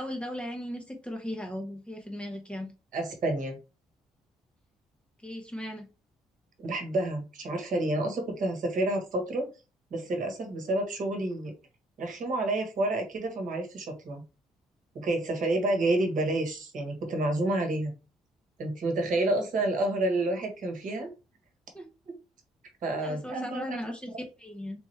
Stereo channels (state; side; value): normal; both; correlation 0.64